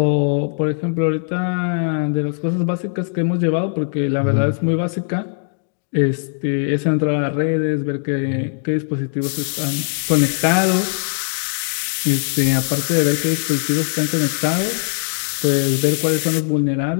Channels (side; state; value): right; silent; digital silence